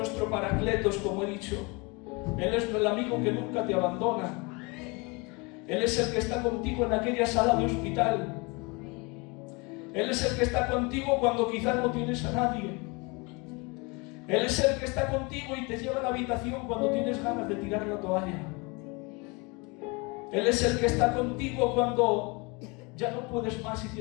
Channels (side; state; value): right; quieter; 28.4 dB